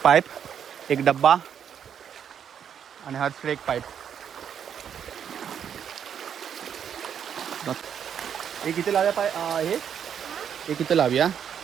पाईप, 1 डब्बा आणि हर्षकडे 1 पाईप. एक इथे लावूया हे एक इथे लावूया.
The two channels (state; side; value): quieter; left; 8.4 dB